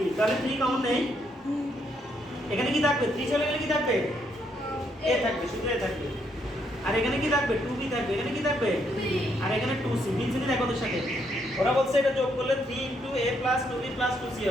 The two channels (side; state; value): both; normal; correlation 0.74